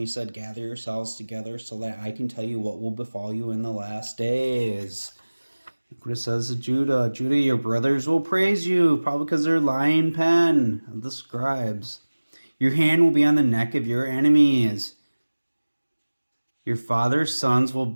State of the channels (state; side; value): inverted; both; correlation -1.00